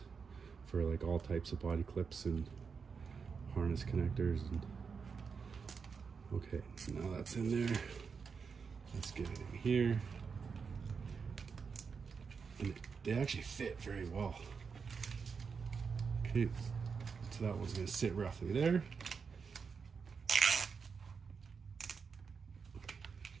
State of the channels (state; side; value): quieter; left; 5.6 dB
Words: for like all types of body clips and harness connectors. And okay, now that's in there. Let's get it in here. And they actually fit very well. Okay, so that one's gonna sit roughly there.